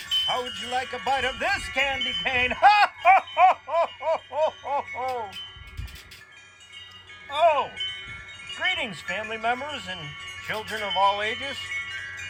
how would you like a bite of this candy cane? Ha ha ha ha ha ha ha ha! Oh, greetings, family members and children of all ages.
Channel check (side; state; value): both; identical; correlation 1.00